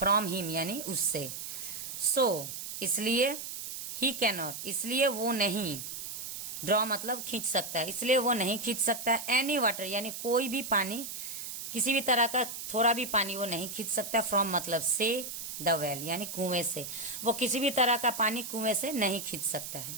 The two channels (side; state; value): right; noise; hiss, 7 dB below the sound